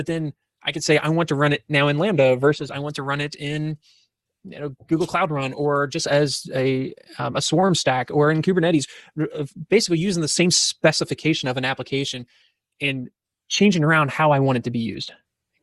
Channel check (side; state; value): both; identical; correlation 1.00